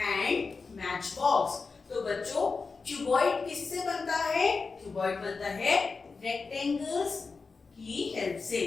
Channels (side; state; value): right; quieter; 4.5 dB